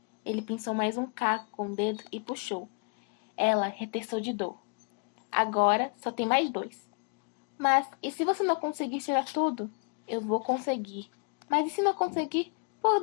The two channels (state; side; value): quieter; right; 34.8 dB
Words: Ele pinçou mais um caco com o dedo e puxou. Ela retessou de dor. Agora só tem mais 2. Mas e se você não conseguir tirar tudo? Eu vou conseguir. Mas e se não conseguir?